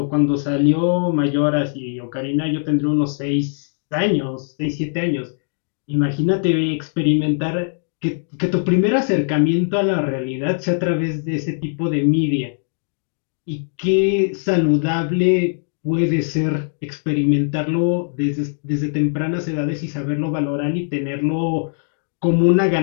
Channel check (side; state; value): right; silent; digital silence